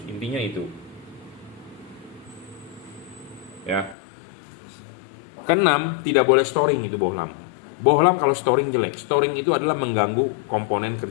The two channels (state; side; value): drops out; right; at 4.0 s